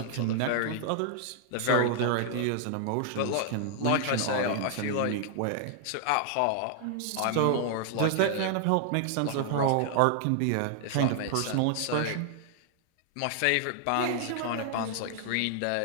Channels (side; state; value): both; different; correlation 0.00